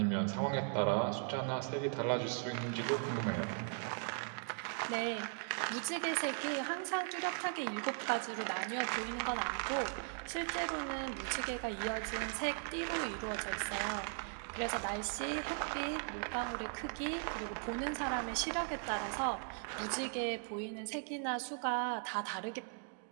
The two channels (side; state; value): left; silent; 52 dB below the other